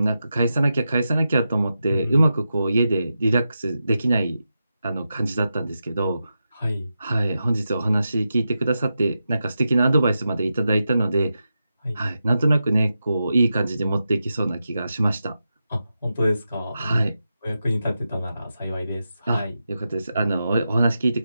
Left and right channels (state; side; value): inverted; both; correlation -0.89